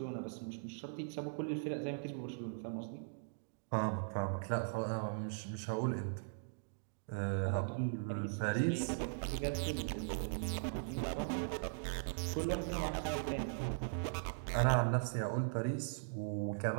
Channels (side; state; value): left; silent; digital silence